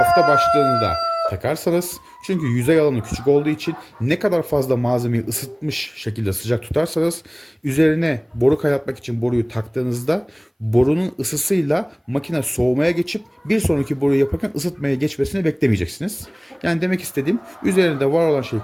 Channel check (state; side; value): identical; both; correlation 1.00